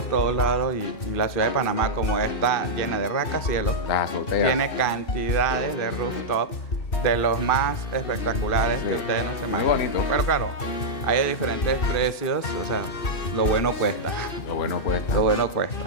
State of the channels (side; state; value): right; late; 2.6 ms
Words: todos lados y la ciudad de Panamá, como está llena de rascacielos, Las azoteas. tiene cantidades de rooftops de los más espectaculares Sí. que ustedes no se Muy imaginan. bonito. Pero claro, hay de diferentes precios, o sea, lo bueno cuesta. Lo bueno cuesta. Lo bueno cuesta.